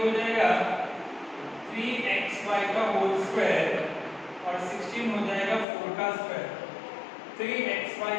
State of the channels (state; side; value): drops out; right; at 5.7 s